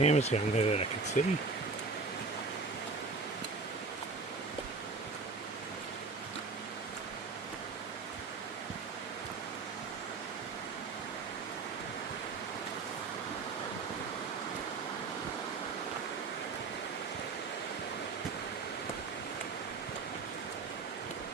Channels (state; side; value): quieter; left; 4.2 dB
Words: down there that I could see.